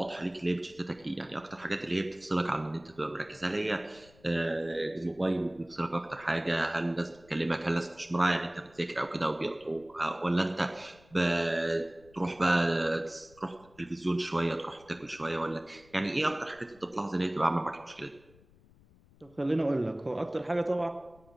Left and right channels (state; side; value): noise; left; rumble, 27 dB below the sound